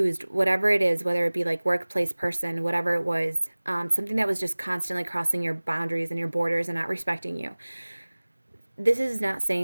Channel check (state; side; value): inverted; both; correlation -1.00